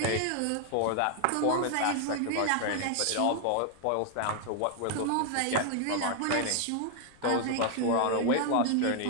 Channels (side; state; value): both; different; correlation 0.00